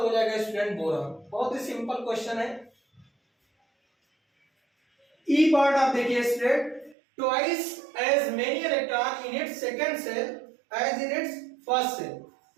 जाएगा स्टूडेंट बोरॉन। बहुत ही सिंपल क्वेश्चन है। ई पार्ट आप देखिए student, twice as many electron in its second shell as in its first shell.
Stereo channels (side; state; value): left; drops out; at 7.0 s